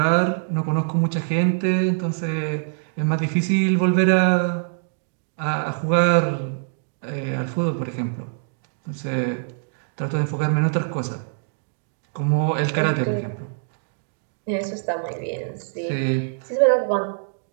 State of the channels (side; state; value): left; silent; digital silence